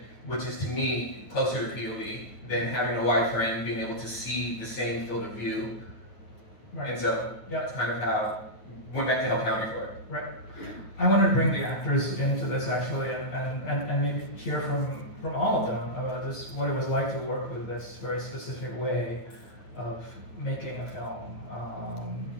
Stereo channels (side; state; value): right; late; 9.3 ms